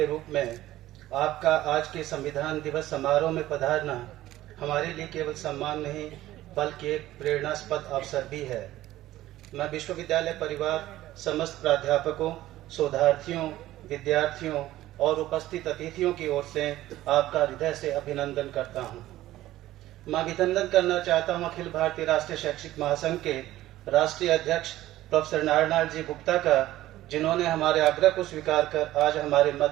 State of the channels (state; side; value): quieter; left; 15.1 dB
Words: रूप में आपका आज के संविधान दिवस समारोह में पधारना हमारे लिए केवल सम्मान नहीं बल्कि एक प्रेरणास्पद अवसर भी है। मैं विश्वविद्यालय परिवार, समस्त प्राध्यापकों, शोधार्थियों, विद्यार्थियों और उपस्थित अतिथियों की ओर से आपका हृदय से अभिनंदन करता हूं। मैं अभिनंदन करना चाहता हूं अखिल भारतीय राष्ट्रीय शैक्षिक महासंघ के राष्ट्रीय अध्यक्ष प्रोफेसर नारायण जी गुप्ता का, जिन्होंने हमारे आग्रह को स्वीकार कर आज हमारे